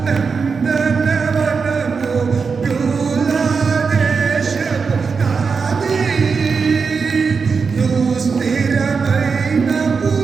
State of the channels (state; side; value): quieter; left; 5.3 dB